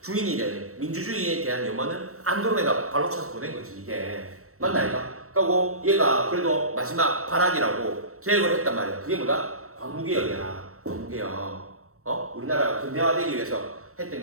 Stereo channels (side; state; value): left; late; 0.64 ms